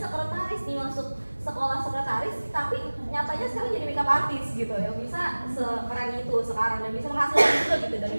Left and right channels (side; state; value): both; inverted; correlation -1.00